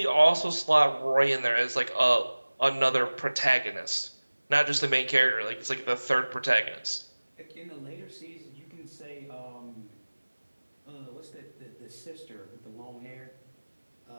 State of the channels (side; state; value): both; inverted; correlation -1.00